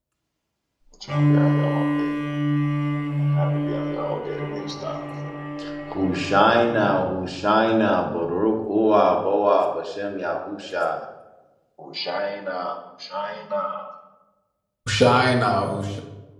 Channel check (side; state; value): both; identical; correlation 1.00